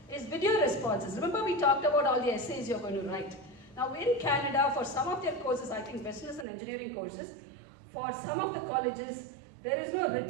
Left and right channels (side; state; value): left; drops out; at 6.5 s